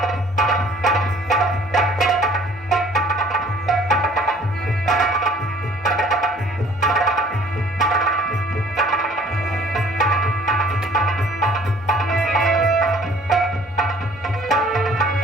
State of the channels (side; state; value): both; normal; correlation 0.55